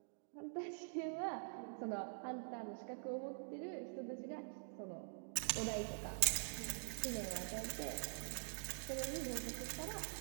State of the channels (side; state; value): left; silent; digital silence